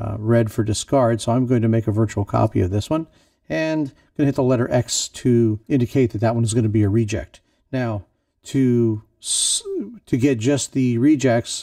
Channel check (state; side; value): identical; both; correlation 1.00